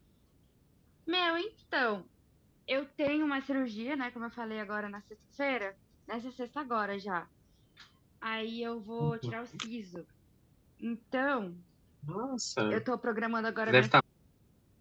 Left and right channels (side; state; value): both; identical; correlation 1.00